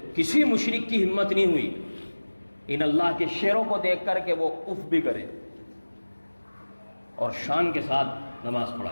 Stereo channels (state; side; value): inverted; both; correlation -1.00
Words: کسی مشرک کی ہمت نہیں ہوئی ان اللہ کے شیروں کو دیکھ کر کہ وہ اف بھی کرے، اور شان کے ساتھ نماز